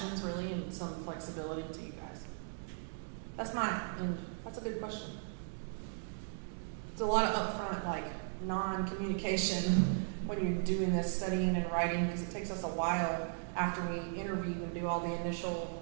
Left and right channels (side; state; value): left; silent; digital silence